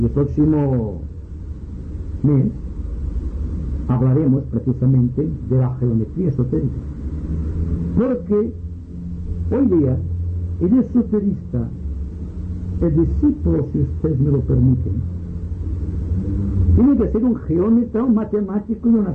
el próximo mes hablaremos precisamente de la geometría esotérica, porque hoy día el esoterista, el discípulo, si ustedes me lo permiten, tiene que ser un geómetra, un matemático y un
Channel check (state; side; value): identical; both; correlation 1.00